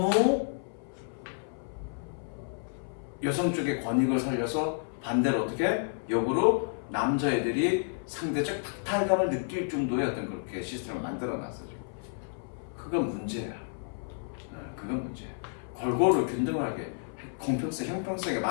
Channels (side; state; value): right; silent; 57 dB below the other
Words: 여성 쪽의 권익을 살려서 반대로 어떻게 역으로 남자애들이 상대적 박탈감을 느낄 정도의 어떤 그렇게 시스템을 만들어놨어 지금. 그건 문제야. 그건 문제야. 골고루 균등하게 공평성, 형평성에